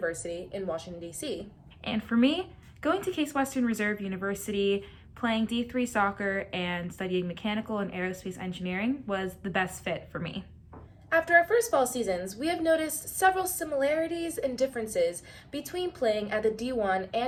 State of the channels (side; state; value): both; identical; correlation 1.00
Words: in Washington, D.C. And for me, going to Case Western Reserve University, playing D3 soccer, and studying mechanical and aerospace engineering was the best fit for me. After our first fall seasons, we have noticed several similarities and differences between playing at the D1